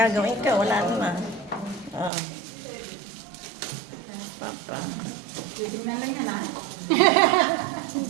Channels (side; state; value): left; drops out; at 2.1 s